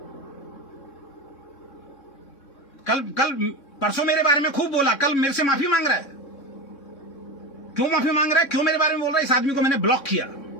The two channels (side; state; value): right; late; 3.6 ms